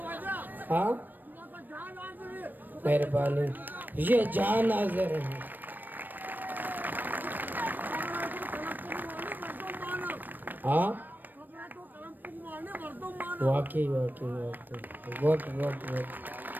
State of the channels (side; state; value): left; late; 0.090 ms